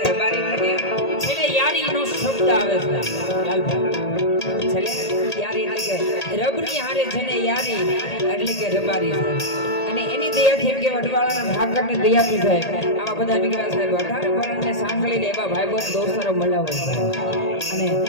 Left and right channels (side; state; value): right; late; 1.8 ms